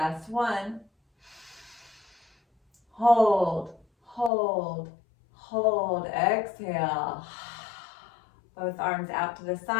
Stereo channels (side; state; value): right; drops out; at 4.3 s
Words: one. Hold, hold, hold. Exhale. Both arms out to the